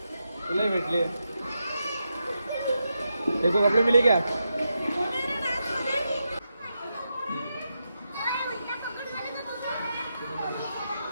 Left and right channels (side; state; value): both; inverted; correlation -0.86